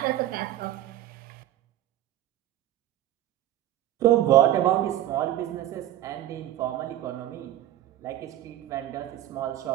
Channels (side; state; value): left; quieter; 13.1 dB